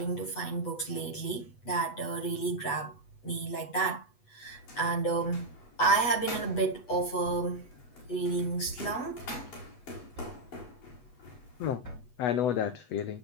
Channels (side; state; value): right; late; 8.1 ms